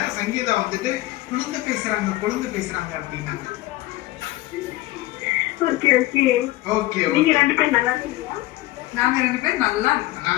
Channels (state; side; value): quieter; right; 17.9 dB